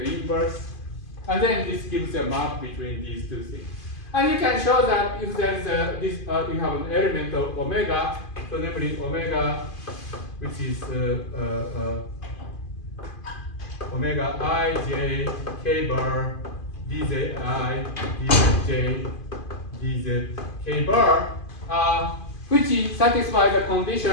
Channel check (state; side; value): late; right; 2.5 ms